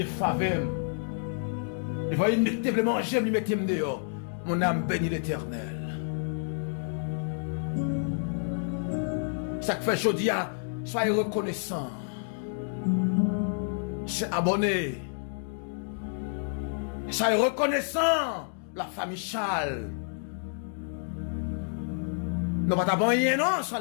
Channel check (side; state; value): right; silent; digital silence